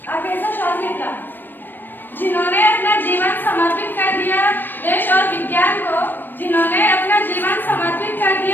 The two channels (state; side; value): late; right; 0.093 ms